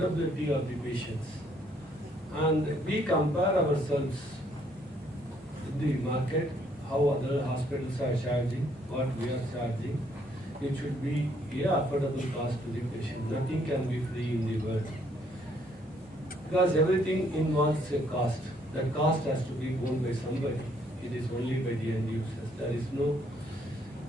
of the patients. And we compare ourselves with the market, how other hospitals are charging, what we are charging. It should be a affordable cost to the patient. Nothing can be free in the world. Because everything involves a cost. That cost has to be borne by somebody. It is only by the end users. There is no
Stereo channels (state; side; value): normal; both; correlation 0.68